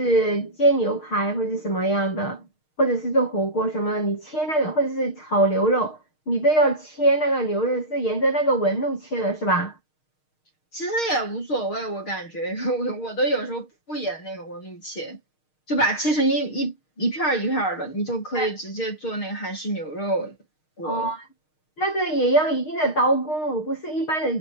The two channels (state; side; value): late; right; 6.5 ms